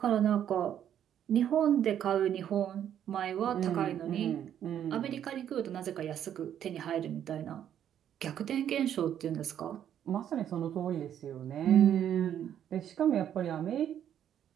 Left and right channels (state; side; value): quieter; left; 9.9 dB